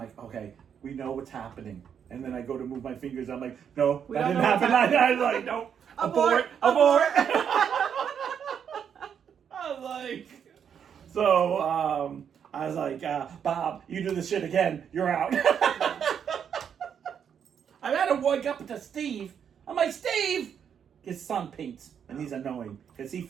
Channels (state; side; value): quieter; left; 7.9 dB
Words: okay, we know what's happening. And then I go to move my fingers. I'm like, no, that didn't happen. I was like, no, abort. I was like, so I was like, Bob, you do this shit again, you're out. I had to wake up to Steve. I'm like, Steve, his son paints, and he's annoying because he